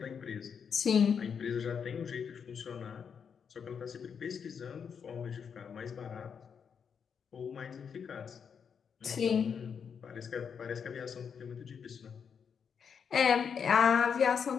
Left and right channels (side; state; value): right; quieter; 6.9 dB